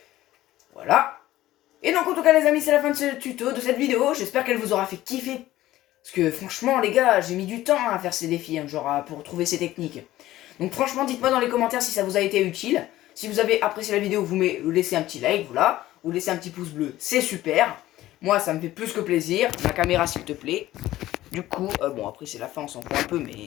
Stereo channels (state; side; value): quieter; right; 15.2 dB